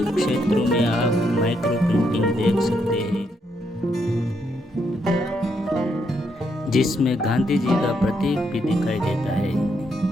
क्षेत्रों में आप माइक्रो प्रिंटिंग देख सकते हैं, जिसमें गांधी जी का प्रतीक भी दिखाई देता है।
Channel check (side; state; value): both; normal; correlation 0.77